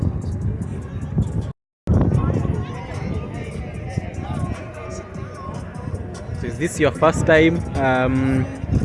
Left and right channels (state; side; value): identical; both; correlation 1.00